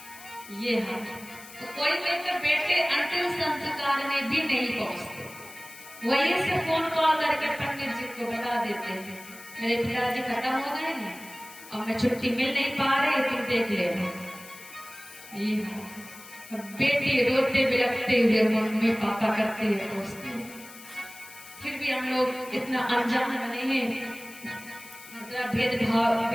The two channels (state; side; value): noise; left; hiss, 18 dB below the sound